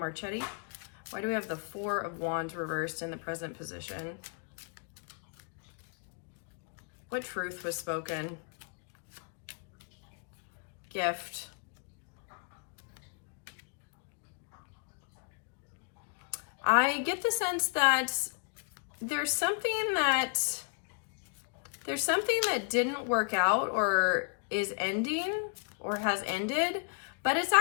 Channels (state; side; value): quieter; right; 39.1 dB